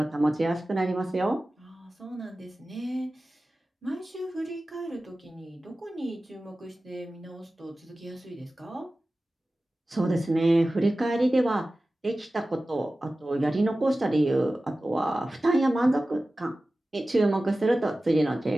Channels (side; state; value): both; normal; correlation 0.96